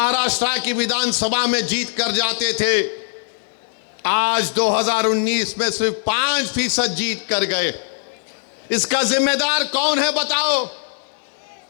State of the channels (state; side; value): silent; right; digital silence